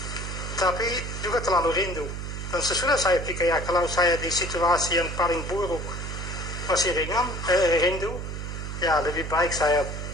Tapi juga terlalu rindu. Dan sesudah saya pikir, ya kalau saya di situasi yang paling buruk masih rindu, ya lebih baik saya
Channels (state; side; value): noise; right; hum, 6 dB below the sound